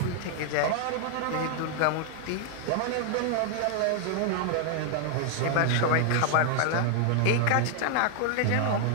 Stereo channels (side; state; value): both; different; correlation 0.00